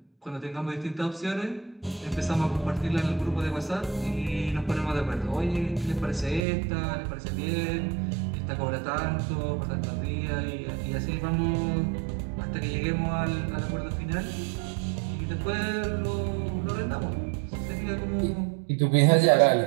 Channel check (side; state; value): left; drops out; at 6.4 s